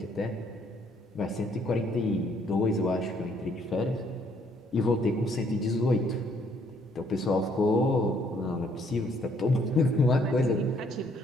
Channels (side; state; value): both; normal; correlation 0.66